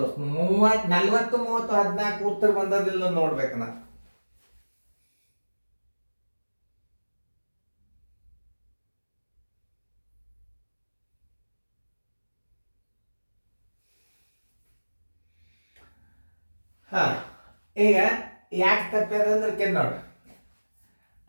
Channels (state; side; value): inverted; both; correlation -1.00